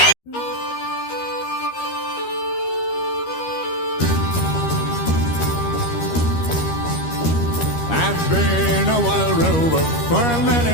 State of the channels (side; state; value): right; late; 13 ms